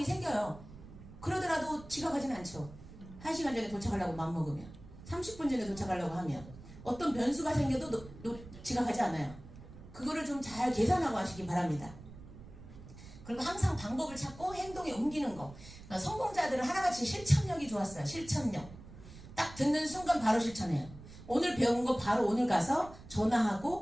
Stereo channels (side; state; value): right; noise; rumble, 17 dB below the sound